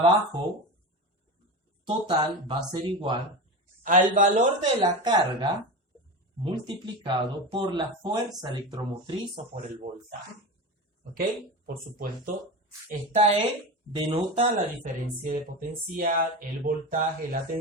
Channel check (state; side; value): normal; both; correlation 0.24